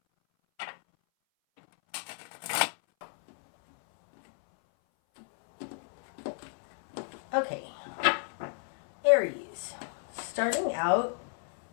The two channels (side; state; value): right; silent; 57 dB below the other